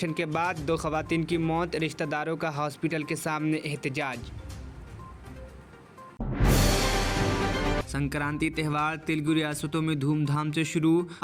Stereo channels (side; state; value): both; identical; correlation 1.00